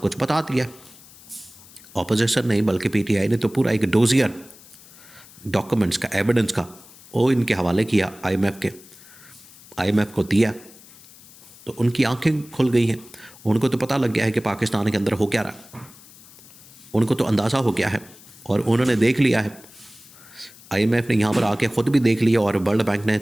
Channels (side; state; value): left; noise; hiss, 22 dB below the sound